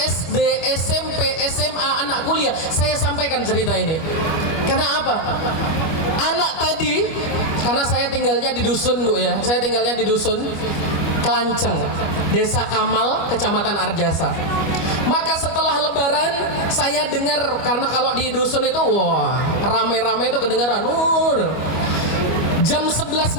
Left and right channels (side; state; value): right; late; 25 ms